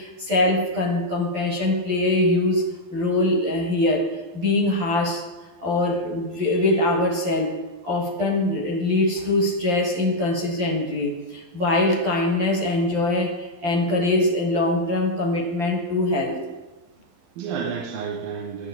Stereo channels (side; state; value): left; late; 12 ms